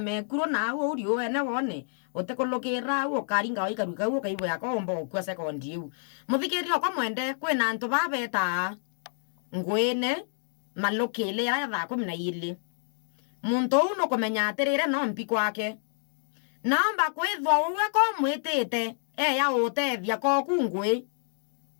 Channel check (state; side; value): silent; right; digital silence